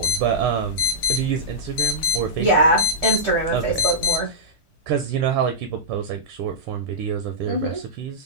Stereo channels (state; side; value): normal; both; correlation -0.14